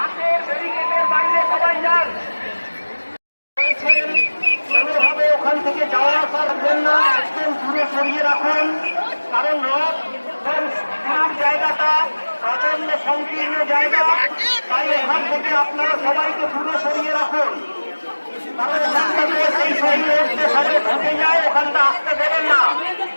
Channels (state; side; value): inverted; both; correlation -1.00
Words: ব্যারিকেডের বাইরে সবাই যান। কোনোভাবে ওখান থেকে যাওয়া আসা করবেন না, একদম দূরে সরিয়ে রাখুন। কারণ রথ জায়গাটা প্রচন্ড সংকীর্ণ জায়গা, তাই ওখান থেকে আপনারা সবাইকে দূরে সরিয়ে রাখুন। কারণ সেই শরীরে উঠতে সবাই ঢুকে যায়, ওখানটা আসতে দেবেন না।